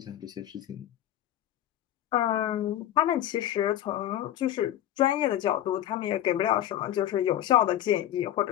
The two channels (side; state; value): right; quieter; 12.4 dB